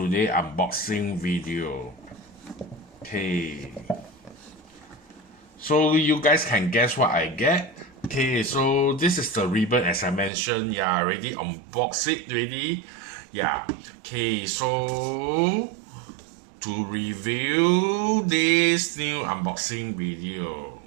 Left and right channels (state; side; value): drops out; left; at 10.3 s